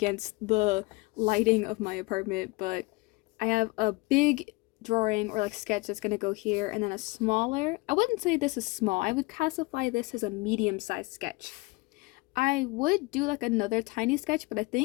the lighting of my apartment, but I have a big drawing or like sketch that's gonna go here, and then a smaller, I wouldn't say this is small, I would classify this as a medium-sized sketch. I would do like another tiny sketch, but I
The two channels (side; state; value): right; quieter; 24.7 dB